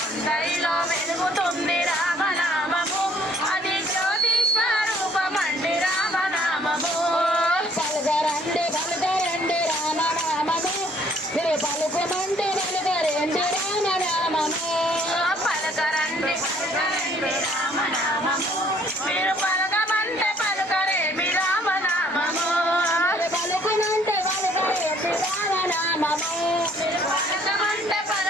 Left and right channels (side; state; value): both; normal; correlation 0.60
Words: అందరిలో వెలుగుతుంది రామనామము, అది జ్యోతిస్వరూపమండి రామనామము. పలుకరండి పలుకరండి రామనామము, మీరు పలుకుమంటే పలుకరండి రామనామము. పలకరండి పలకరండి రామనామము, మీరు పలకమంటే పలుకరేమి రామనామము. పలుకునంటే పలుకరండి రామనామము. పలకమంటే